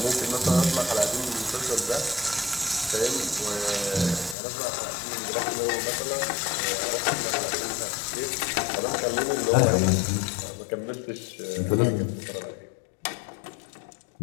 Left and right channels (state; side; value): drops out; right; at 4.4 s